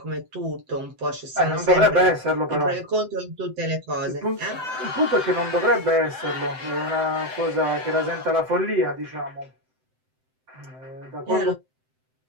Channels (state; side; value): late; left; 7.8 ms